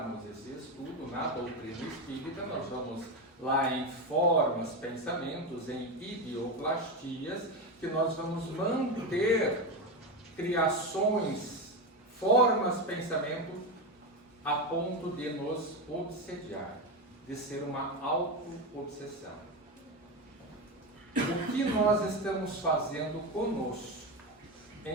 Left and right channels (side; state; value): both; normal; correlation 0.15